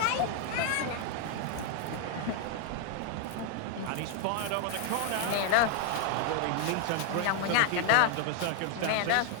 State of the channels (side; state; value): both; different; correlation 0.00